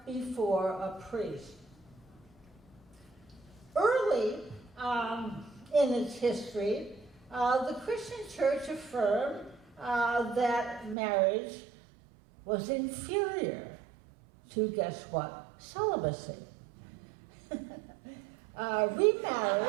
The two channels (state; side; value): drops out; left; at 11.0 s